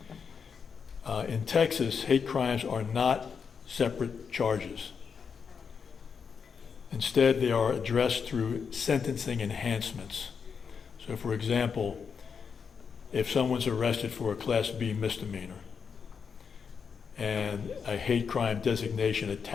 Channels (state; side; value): quieter; right; 6.2 dB